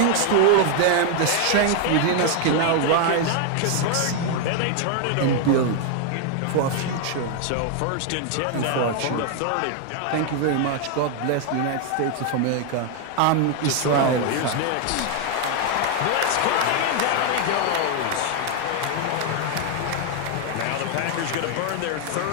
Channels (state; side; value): different; both; correlation 0.00